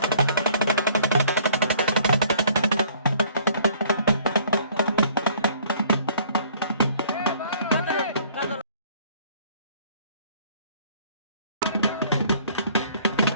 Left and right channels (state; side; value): inverted; both; correlation -0.57